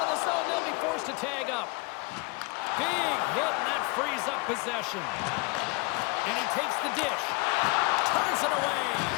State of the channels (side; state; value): right; quieter; 28.7 dB